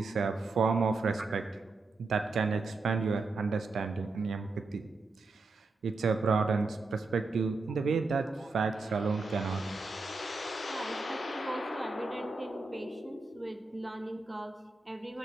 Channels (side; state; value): left; quieter; 3.7 dB